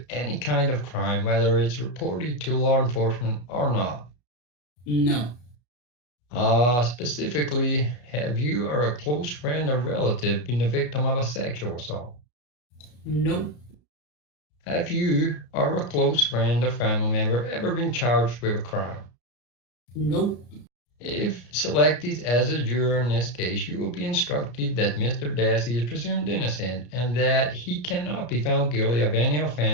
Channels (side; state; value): right; late; 33 ms